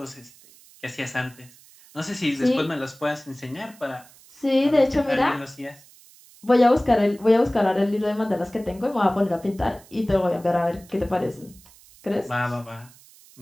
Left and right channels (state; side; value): noise; right; hiss, 25 dB below the sound